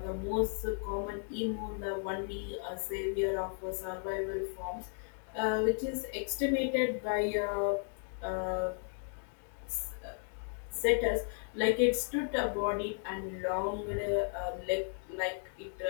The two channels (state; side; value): silent; right; 54 dB below the other